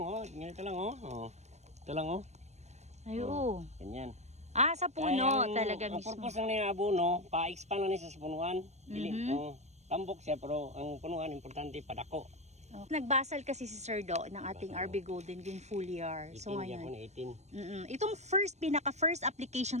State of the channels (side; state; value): left; late; 0.32 ms